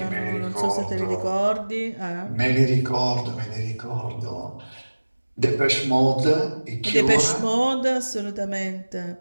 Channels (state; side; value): inverted; both; correlation -1.00